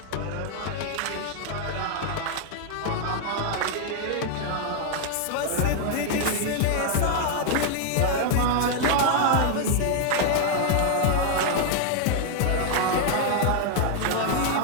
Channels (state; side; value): different; both; correlation 0.00